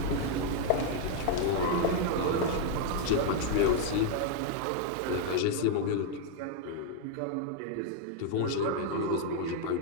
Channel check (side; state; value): both; different; correlation 0.00